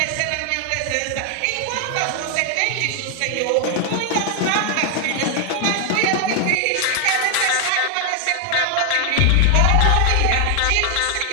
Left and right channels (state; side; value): different; both; correlation 0.00